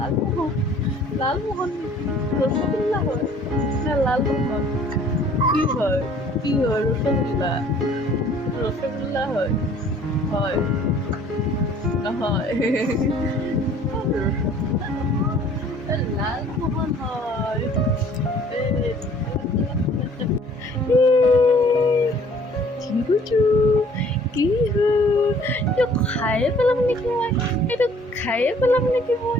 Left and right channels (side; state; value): both; normal; correlation 0.55